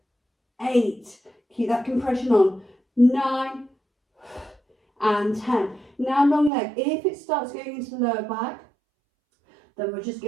8, keep that compression on. 9, and 10. Now long leg. If it starts going into the lower back, then we're just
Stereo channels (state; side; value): drops out; left; at 6.5 s